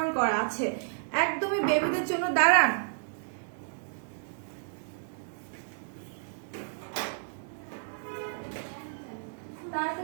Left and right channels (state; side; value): silent; left; digital silence